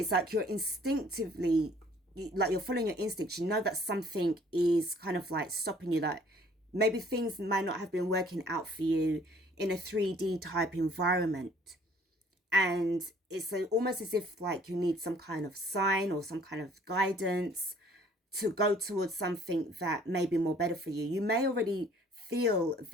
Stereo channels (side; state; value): both; normal; correlation 0.57